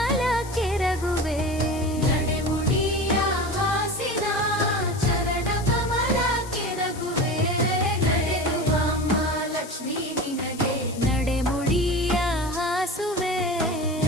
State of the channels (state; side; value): noise; left; hiss, 16 dB below the sound